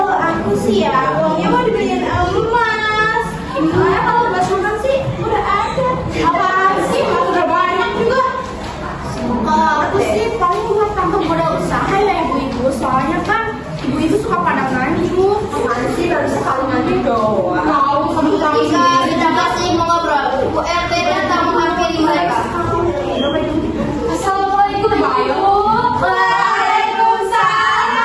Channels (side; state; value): both; identical; correlation 1.00